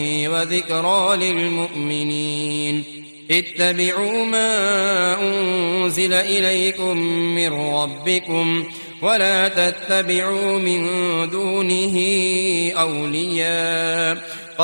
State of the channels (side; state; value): both; inverted; correlation -1.00